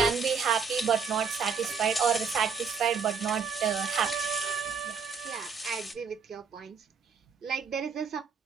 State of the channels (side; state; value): left; quieter; 5.8 dB